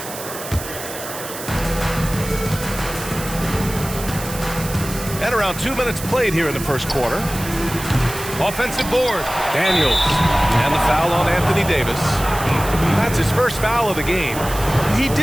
And around 2 minutes played here in the first quarter. Offensive board. Daniels. And the foul on Anthony Davis. That's his first foul of the game. He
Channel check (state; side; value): noise; right; hiss, 10 dB below the sound